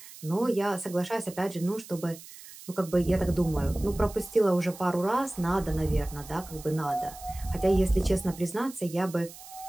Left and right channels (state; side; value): noise; right; hiss, 17 dB below the sound